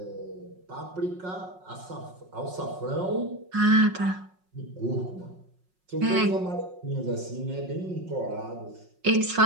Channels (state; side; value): late; left; 5.5 ms